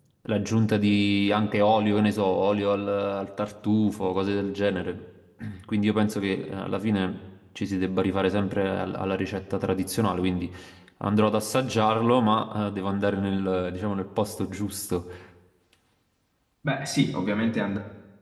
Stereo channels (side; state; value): both; identical; correlation 1.00